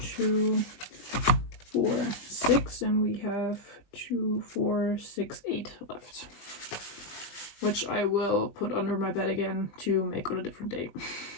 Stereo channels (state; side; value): late; right; 20 ms